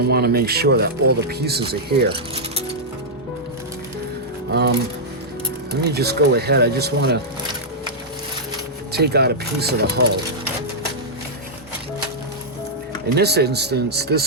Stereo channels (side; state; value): both; normal; correlation -0.09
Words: want to make sure that all the pieces are here. Let me just go ahead. I just want to take out a piece of the hull. In this instance,